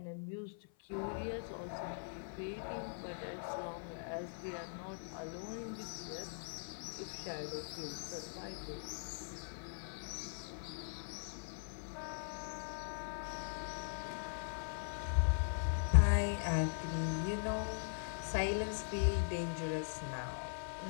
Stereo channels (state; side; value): silent; right; 50 dB below the other